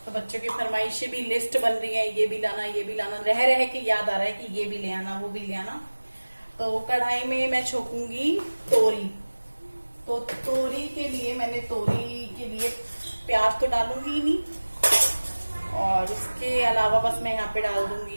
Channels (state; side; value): inverted; both; correlation -1.00